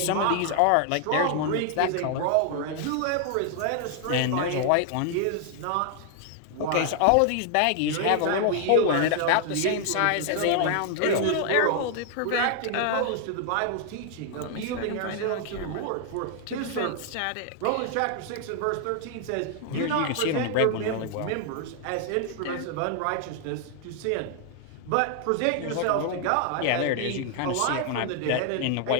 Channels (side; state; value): both; different; correlation 0.00